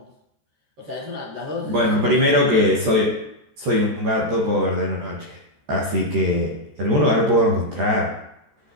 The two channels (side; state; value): left; late; 13 ms